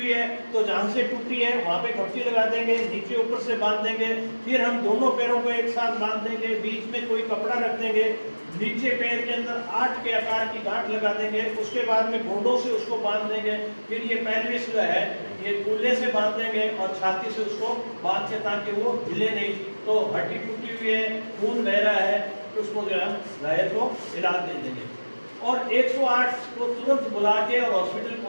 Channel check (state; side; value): inverted; both; correlation -1.00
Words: है तो जहाँ से टूटी है वहाँ पे खपची लगा देंगे, नीचे ऊपर से बांध देंगे, फिर हम दोनों पैरों को एक साथ बांध देंगे, बीच में कोई कपड़ा रख देंगे, नीचे पैर के अंदर 8 के आकार की गांठ लगा देंगे, उसके बाद में घोड़ों से उसको बांध देंगे, फिर ये पेल्विस जो है ये कूल्हे से बांध देंगे और छाती से उसको बांध के ताकि वो हिले नहीं। तो हड्डी टूटी हुई है, खून बह रहा है, तो उसको जो है घायल को इलाज दे देंगे। और 108 को तुरंत बुला के और हॉस्पिटल